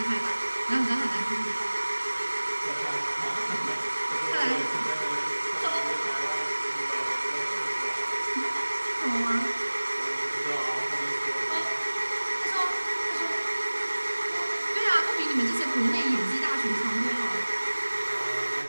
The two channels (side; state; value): both; inverted; correlation -1.00